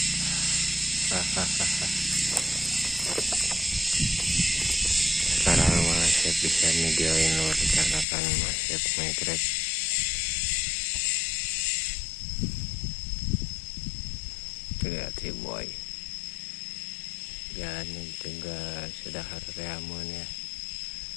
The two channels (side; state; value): right; drops out; at 8.1 s